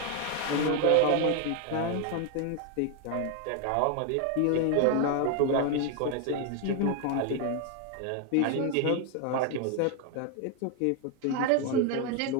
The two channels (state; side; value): different; both; correlation 0.01